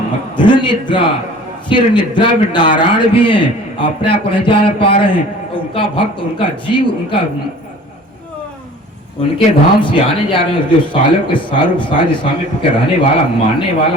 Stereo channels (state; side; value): normal; both; correlation 0.46